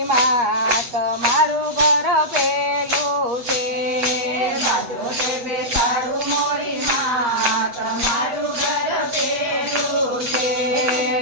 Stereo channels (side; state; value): left; late; 8.4 ms